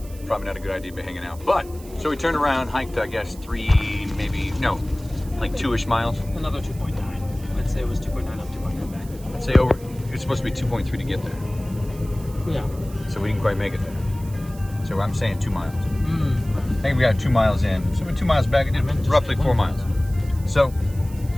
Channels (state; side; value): noise; right; hiss, 21 dB below the sound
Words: Probably not a good idea to be hanging out. But, so we turned around, hiked, I guess, like 2-ish miles. Another 2.9. Let's say it was 2.9 up, 2.9 back. I'd say over, it's supposed to be 2.3 to get there. Yeah. So we didn't quite make it there. So I'm saying 2 miles. Mm. I think we got 2 miles in. So we're 2 miles back, it did roughly 4 miles. So,